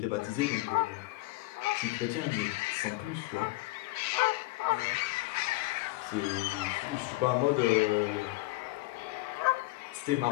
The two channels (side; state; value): right; quieter; 19.9 dB